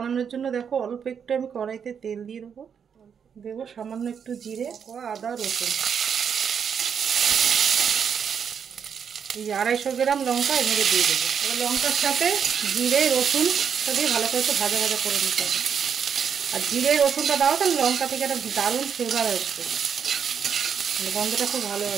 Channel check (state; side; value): quieter; left; 7.3 dB